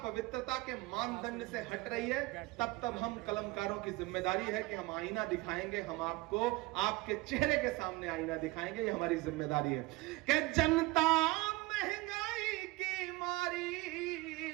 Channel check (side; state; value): left; quieter; 21.3 dB